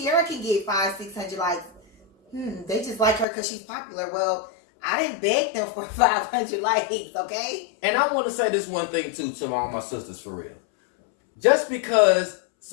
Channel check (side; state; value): right; drops out; at 3.2 s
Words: can get 500-600 likes. They just like her because she's popular. Well, I didn't beg them for 500 likes, okay? And I want to say this one thing, too, to all my sisters, for real. Just because